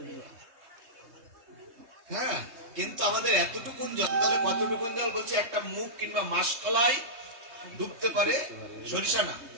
হ্যাঁ, কিন্তু আমাদের এতটুকুন জল, তাহলে কতটুকুন জল বলছে? একটা মুখ কিংবা মাসকলাই ডুবতে পারে, সরিষা না,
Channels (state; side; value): late; left; 3.2 ms